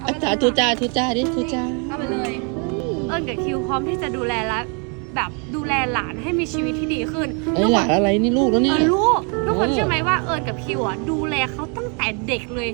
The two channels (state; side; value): quieter; left; 36.4 dB